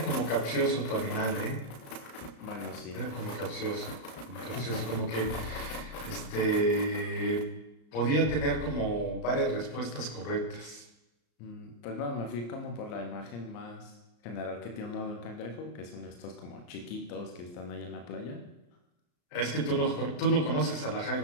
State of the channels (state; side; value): late; right; 34 ms